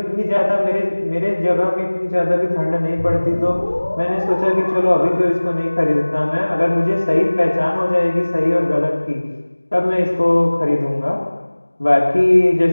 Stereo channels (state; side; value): inverted; both; correlation -1.00